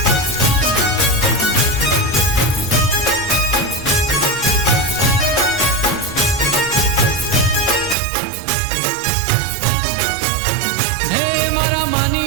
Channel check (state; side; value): drops out; left; at 8.0 s